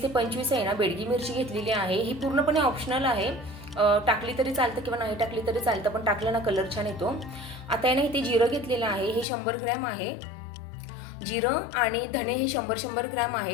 ते 25 आहे ना बेडगी मिरची घेतलेली आहे. ही पूर्णपणे ऑप्शनल आहे, टाकली तरी चालतं किंवा नाही टाकली तरी चालतं, पण टाकलं ना कलर छान येतो. आता आहे ना इथे जिरं घेतलेलं आहे, हे 100 ग्रॅम आहे. जिरं आणि धणे हे 100 ग्रॅम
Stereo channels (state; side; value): drops out; right; at 9.2 s